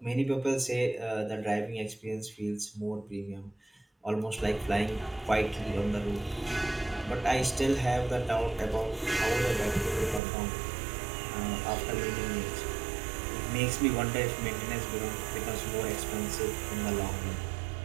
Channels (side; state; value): left; drops out; at 10.2 s